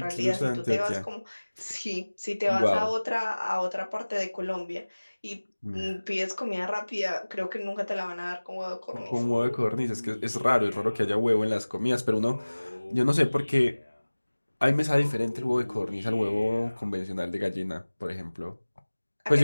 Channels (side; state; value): both; inverted; correlation -1.00